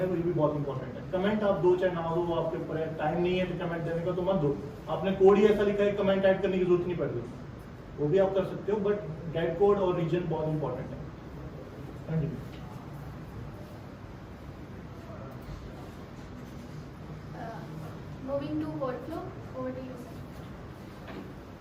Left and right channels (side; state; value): both; identical; correlation 1.00